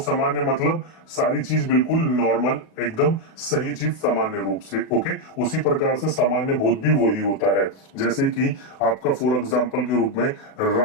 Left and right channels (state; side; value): late; right; 37 ms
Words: मतलब सारी चीज बिल्कुल नॉर्मल, एकदम सही चीज सामान्य रूप से। ओके, उसी प्रकार से सामान्य भूत भी वही होता है। जैसे कि आपका फॉर एग्जांपल के रूप में